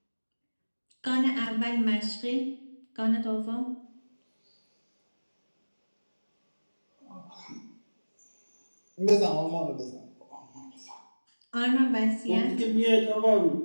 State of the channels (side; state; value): both; inverted; correlation -1.00